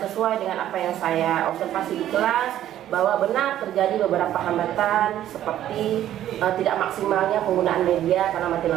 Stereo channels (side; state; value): left; quieter; 12.1 dB